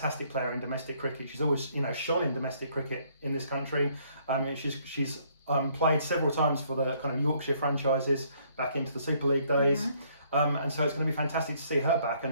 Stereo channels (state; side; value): inverted; both; correlation -0.65